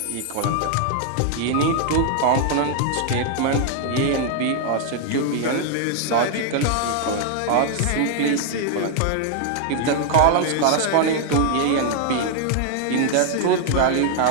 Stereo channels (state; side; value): different; both; correlation 0.00